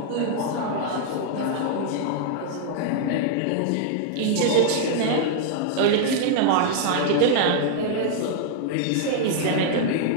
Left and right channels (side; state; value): both; different; correlation -0.01